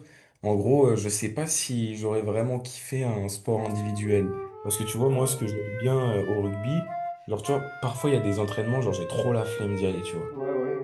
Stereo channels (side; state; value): both; identical; correlation 1.00